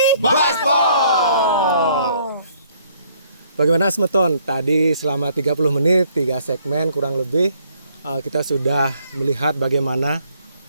Bagaimana Semeton? Tadi selama 30 menit, 3 segmen kurang lebih, kita sudah melihat bagaimana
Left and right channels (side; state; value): both; inverted; correlation -0.65